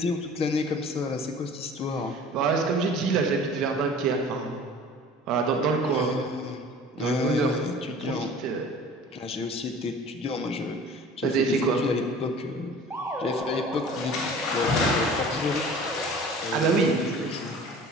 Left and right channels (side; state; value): both; normal; correlation 0.44